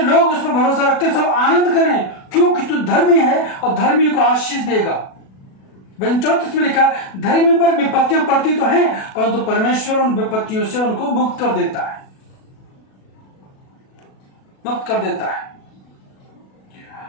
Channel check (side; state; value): right; late; 37 ms